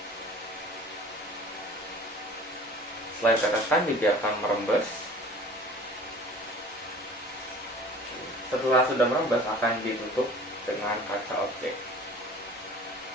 Setelah diteteskan, dibiarkan merembes. Setelah sudah merembes, akan ditutup dengan kaca objek.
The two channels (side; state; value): both; normal; correlation 0.45